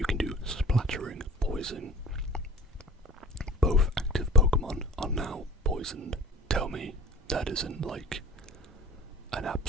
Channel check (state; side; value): normal; both; correlation 0.42